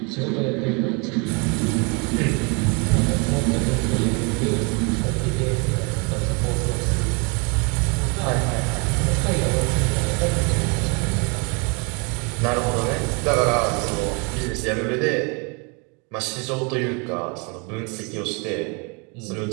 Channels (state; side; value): quieter; left; 31.5 dB